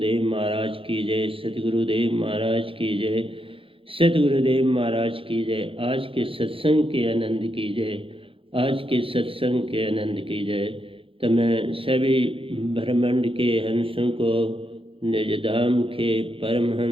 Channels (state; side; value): late; left; 0.26 ms